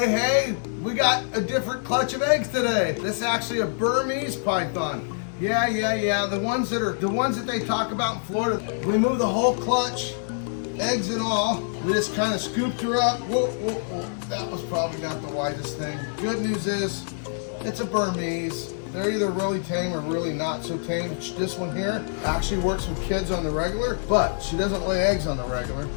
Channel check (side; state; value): right; silent; 61 dB below the other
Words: we got a different clutch of eggs today. This is actually a Burmese python. Yeah. The ones that they talk about in Florida. We moved the whole clutch, eggs and all. We just kind of scooped her up. Whoa. That was probably not the wisest thing. Good news is, it's a Burmese. They're either really tame or really not so tame. This one here actually works with kids on the regular, but she doesn't lay eggs on the regular.